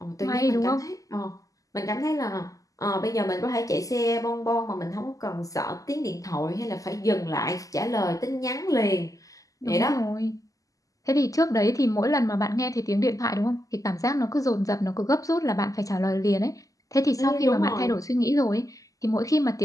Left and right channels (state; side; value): late; right; 0.17 ms